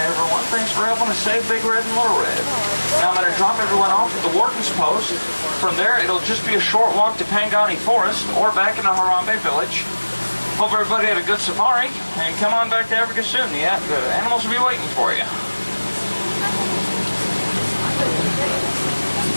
everyone. Thanks for helping us save Big Red and Little Red. Now I'm going to drop everyone off at the Warden's Post. From there, it'll just be a short walk to Pangani Forest or back into Harambe Village. Hope everybody had a good safari, and come on back to Africa soon. The animals will be waiting for you.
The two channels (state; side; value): inverted; both; correlation -1.00